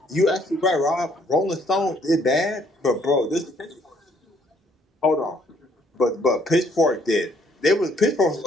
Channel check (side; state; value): both; normal; correlation 0.65